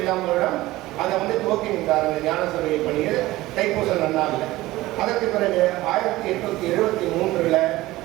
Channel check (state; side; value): quieter; left; 17.7 dB